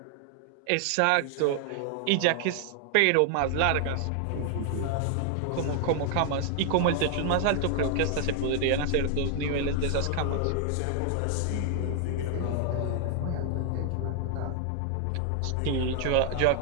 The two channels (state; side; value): different; both; correlation 0.00